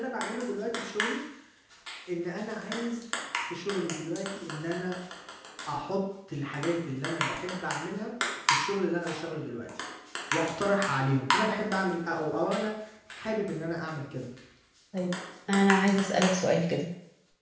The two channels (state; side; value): identical; both; correlation 1.00